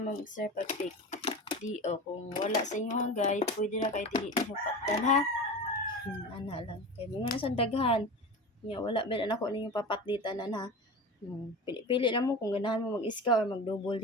ma'am sir pag pick. Di o kung wala sa inyo ang guide, pwede ra kay dili ninyo patdan ha. Ana lang kay mga nasa daghan. Nya wala man ako ninyo papatlitan ha. Pili na mo kung ganahan mo mag-iska or mag-double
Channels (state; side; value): normal; both; correlation 0.30